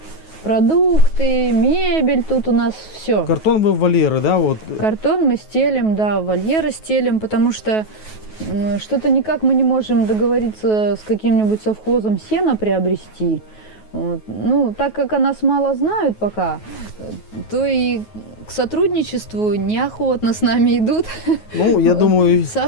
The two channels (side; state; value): right; late; 9.3 ms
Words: продукты, мебель. Тут у нас все. Картон вы в вольеры, да? Вот. Картон мы стелим, да, вольеры стелим, потому что что-то никак мы не можем договориться с каким-нибудь совхозом сена приобрести. Вот. Ну, так как о нас мало знают пока, то и к сотрудничеству неохотно с нами идут. Ну, я думаю, со